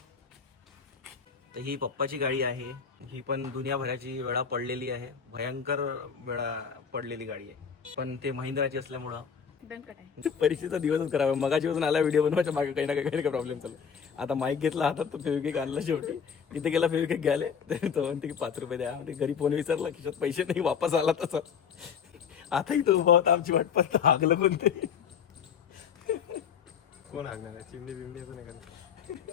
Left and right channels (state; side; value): quieter; right; 6.9 dB